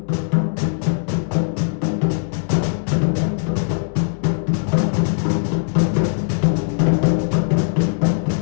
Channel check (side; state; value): right; silent; 66 dB below the other